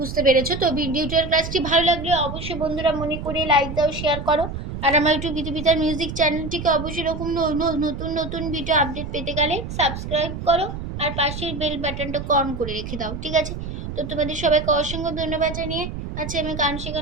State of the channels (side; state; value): right; noise; rumble, 7 dB below the sound